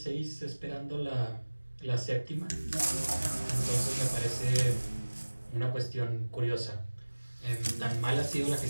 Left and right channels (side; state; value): both; inverted; correlation -1.00